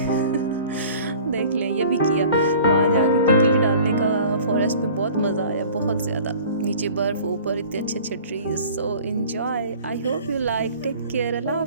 देख लें ये भी किया, वहाँ जाके किकली डालने का फॉरेस्ट में बहुत मज़ा आया, बहुत ज़्यादा। नीचे बर्फ़, ऊपर इतने अच्छे अच्छे trees. So enjoy. I hope you like. Take care. अल्लाह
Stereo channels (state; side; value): inverted; both; correlation -0.47